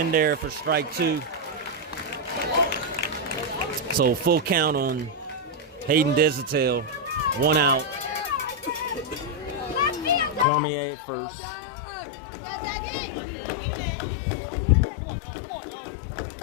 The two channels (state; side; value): drops out; right; at 10.5 s